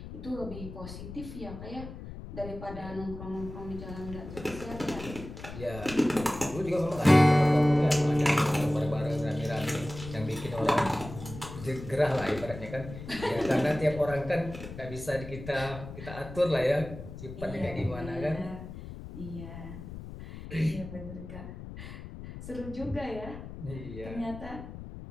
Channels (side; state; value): left; noise; rumble, 11 dB below the sound